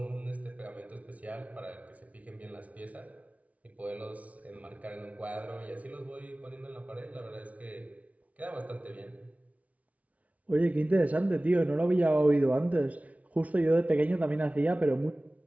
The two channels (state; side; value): late; left; 0.068 ms